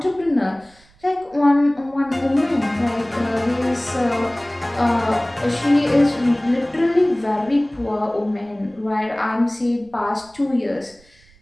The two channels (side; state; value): right; noise; rumble, 29 dB below the sound